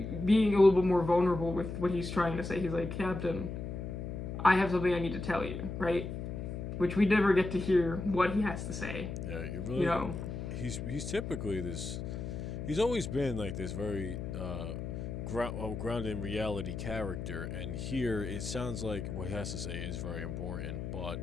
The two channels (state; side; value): noise; left; hum, 6 dB below the sound